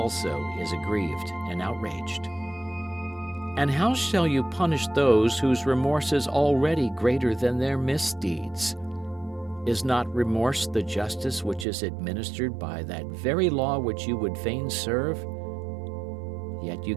is aggrieved and outraged? And how shall you punish those whose remorse is already greater than their misdeeds? Is not remorse the justice which is administered by that very law which you would fain serve? Yet you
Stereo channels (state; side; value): drops out; left; at 11.7 s